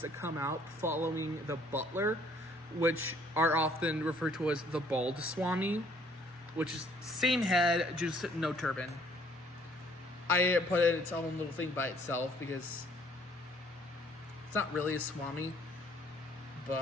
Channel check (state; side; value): normal; both; correlation 0.61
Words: that come out following the butler, which are often referred to as the bald Swami, which is same head, just no turban. I put it in its own little thing by itself because it's not really a Swami.